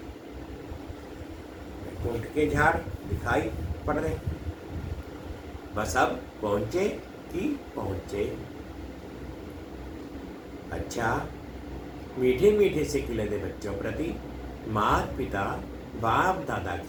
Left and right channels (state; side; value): identical; both; correlation 1.00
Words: ऊंट के झाड़ दिखाई पड़ रहे, बस अब पहुंचे कि पहुंचे। अच्छा, मीठे मीठे से खिलते बच्चों प्रति माता पिता बाप दादा